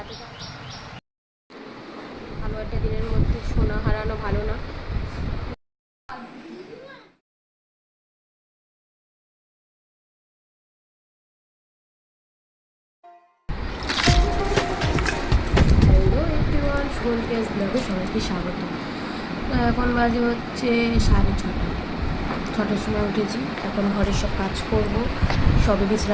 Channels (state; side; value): identical; both; correlation 1.00